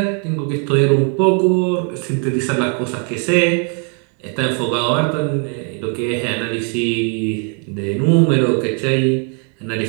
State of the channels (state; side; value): quieter; left; 38.4 dB